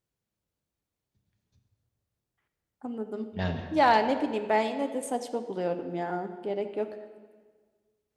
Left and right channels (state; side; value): identical; both; correlation 1.00